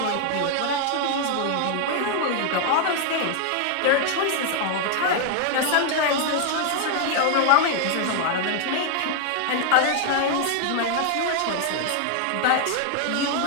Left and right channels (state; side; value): different; both; correlation 0.00